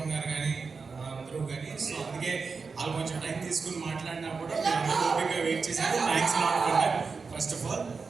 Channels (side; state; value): left; quieter; 4.8 dB